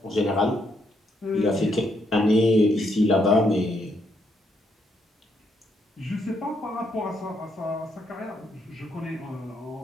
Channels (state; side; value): normal; both; correlation 0.75